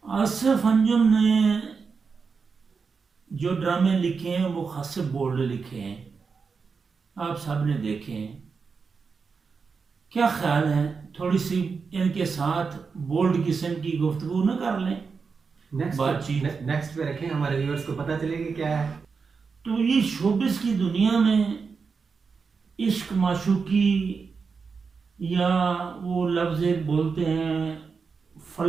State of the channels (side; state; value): left; quieter; 5.2 dB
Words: आसिफ अंजुम ने जो ड्रामे लिखे हैं वो खासे बोल्ड लिखे हैं, आप सब ने देखे हैं। क्या ख्याल है थोड़ी सी इनके साथ बोल्ड किस्म की गुफ्तगू न कर लें, बातचीत। नेक्स्ट पे रखें, हमारे व्यूअर्स को पता चलेगा क्या है। तो ये शोबिस की दुनिया में इश्क माशूकी, या वो लफ्ज़ एक बोलते हैं